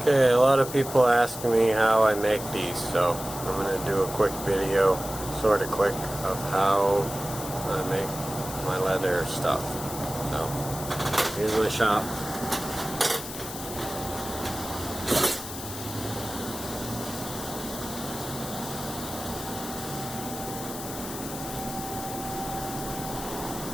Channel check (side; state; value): left; noise; hiss, 9 dB below the sound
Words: Okay, a lot of people ask me how I make these, so I'm going to do a quick video, sort of quick, of how I make my leather stuff. So, here's my shop.